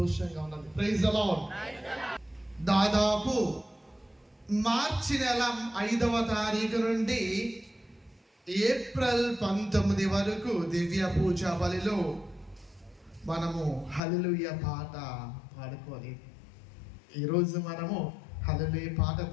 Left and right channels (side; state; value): right; drops out; at 14.0 s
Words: ఉన్నది. Praise the Lord. దాదాపు మార్చి నెల 5వ తారీఖు నుండి ఏప్రిల్ 19 వరకు దివ్య పూజ బలిలో మనము హల్లెలూయా పాట పాడుకొని, ఈరోజు మనము హల్లెలూయా పాట